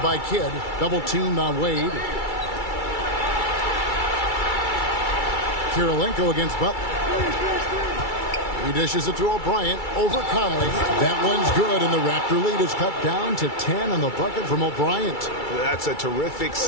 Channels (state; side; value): late; right; 2.3 ms